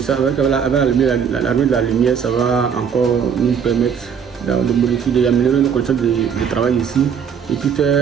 avec l'arrivée de la lumière, ça va encore nous permettre de modifier, d'améliorer nos conditions de travail ici et puis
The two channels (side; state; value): left; quieter; 7.3 dB